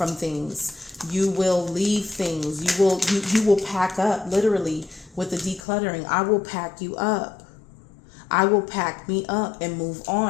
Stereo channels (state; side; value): drops out; right; at 5.6 s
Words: things. You will leave things. You will pack up, literally, with the decluttering. I will pack you up. I will pack me up and move